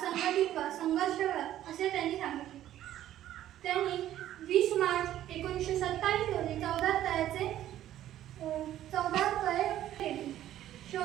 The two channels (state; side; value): quieter; left; 12.5 dB